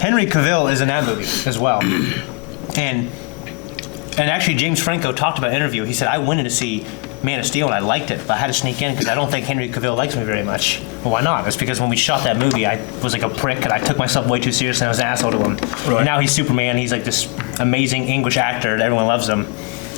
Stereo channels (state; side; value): quieter; right; 31.6 dB